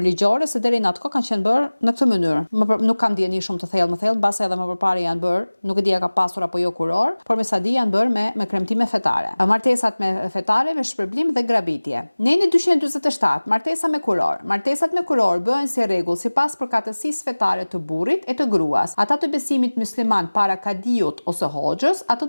ligjore, se deri në atë kohë kanë qenë bërë në këtë mënyrë. Nuk kam dieni shumë të thellë, mbase edhe më përpara janë bërë, nuk e di a ka pasur apo jo kuror, por me sa di janë bërë me kremtime fetare. Martesat me fetare, me shpërblim dhe grabitje. Në 247, martesa me kuror. Martesat me kuror bëhen si rregull sipas përkatësisë fetare të burrit e të gruas. Ata të besimit musliman para kadiut ose hoxhës, ato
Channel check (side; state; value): both; inverted; correlation -1.00